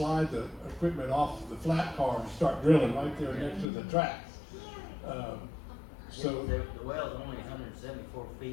the equipment off the flat car and start drilling right there next to the tracks. So the well's only 174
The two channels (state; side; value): drops out; right; at 3.7 s